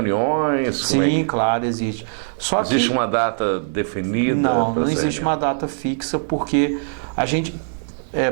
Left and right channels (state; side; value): silent; left; digital silence